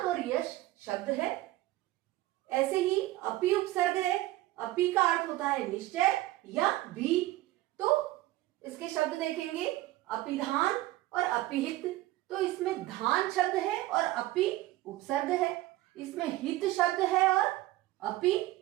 और यश शब्द है। ऐसे ही अपि उपसर्ग है। अपि का अर्थ होता है निश्चय या भी। तो इसके शब्द देखेंगे अपिधान और अपिहित। तो इसमें धान शब्द है और अपि उपसर्ग है। इसमें हित शब्द है और अपि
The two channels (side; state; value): left; quieter; 17.0 dB